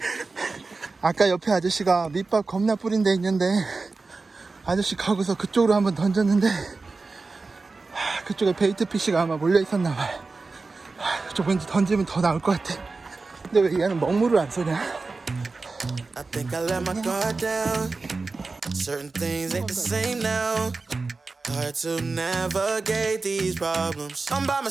아까 옆에 아저씨가 밑밥 겁나 뿌린 데 있는데 아저씨 가고서 그쪽으로 한번 던졌는데 그쪽에 베이트 피쉬가 아마 몰려 있었나봐요. 그쪽 왠지 던지면 더 나올 것 같아. 근데 왜 얘는 먹물을 안 쏘냐? I think I let my guard down. Certain things ain't the same now. Hard to navigate these problems. I'm by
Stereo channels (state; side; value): quieter; left; 3.9 dB